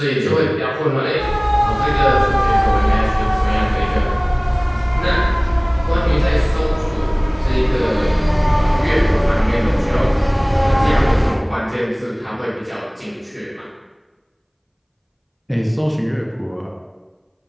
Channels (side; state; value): both; identical; correlation 1.00